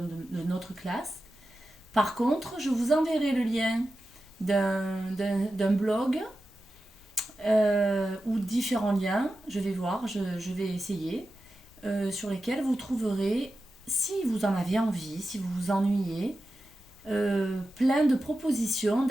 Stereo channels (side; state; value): both; normal; correlation 0.92